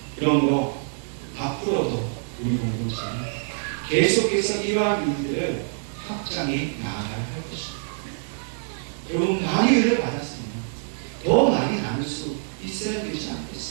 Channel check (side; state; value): left; silent; digital silence